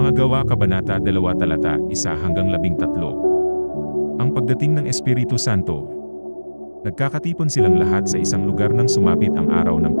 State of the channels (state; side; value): inverted; both; correlation -1.00